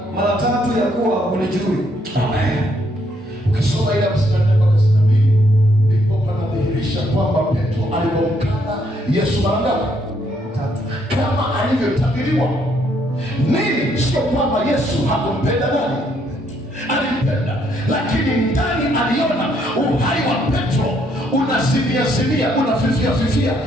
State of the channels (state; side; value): normal; both; correlation 0.71